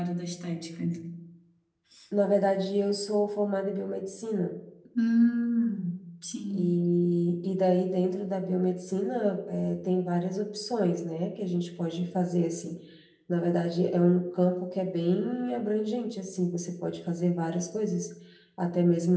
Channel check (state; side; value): identical; both; correlation 1.00